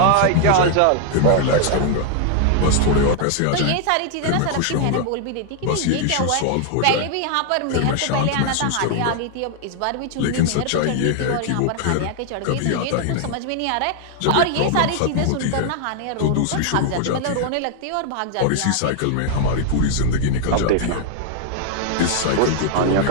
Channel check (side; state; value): both; different; correlation 0.00